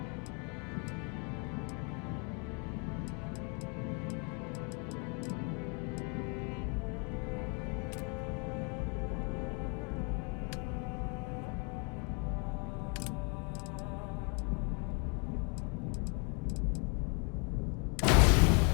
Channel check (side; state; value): right; quieter; 35.8 dB